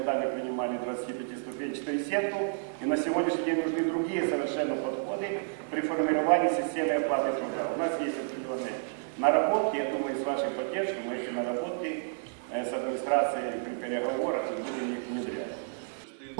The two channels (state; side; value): silent; left; 57 dB below the other